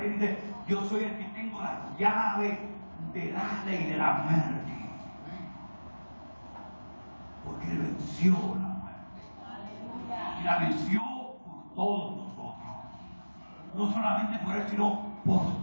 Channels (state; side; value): inverted; both; correlation -1.00